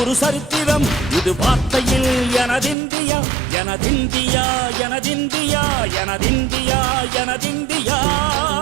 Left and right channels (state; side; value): drops out; left; at 2.8 s